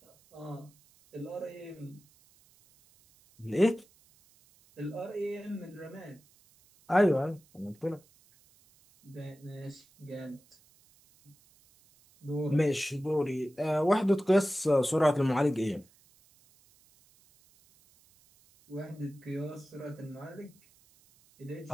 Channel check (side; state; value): right; noise; hiss, 30 dB below the sound